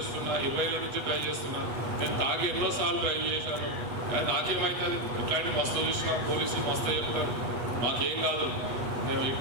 20 ఏళ్ళ నుంచి డ్రైవ్ చేస్తున్నా, నేను తాగి ఎన్నోసార్లు డ్రైవ్ చేశాను, నాకేమవుతుంది, ఇట్లాంటి మస్తు చూసినా పోలీసులు మస్తు చెప్తారు, మాకేం కాదు, మేము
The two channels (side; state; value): left; late; 8.1 ms